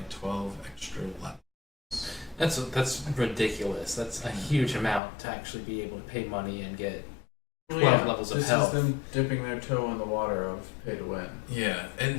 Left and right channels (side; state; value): right; drops out; at 5.0 s